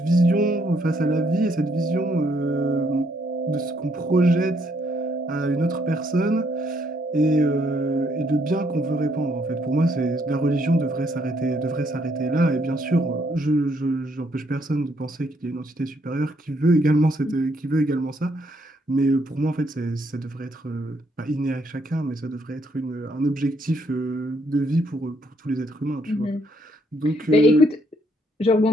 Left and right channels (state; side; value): normal; both; correlation 0.71